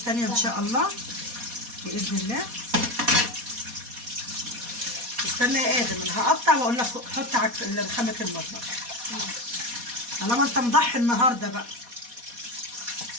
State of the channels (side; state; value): left; late; 4.2 ms